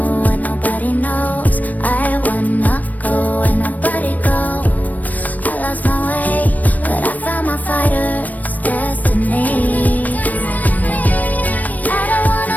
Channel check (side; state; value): right; late; 0.078 ms